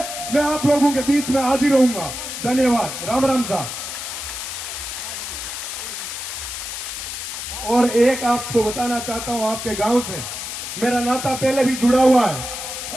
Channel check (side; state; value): left; noise; hiss, 6 dB below the sound